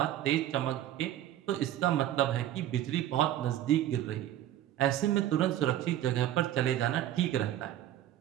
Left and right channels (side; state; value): left; quieter; 12.4 dB